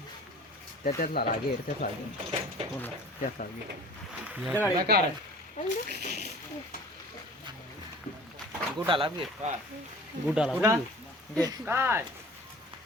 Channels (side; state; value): both; normal; correlation 0.45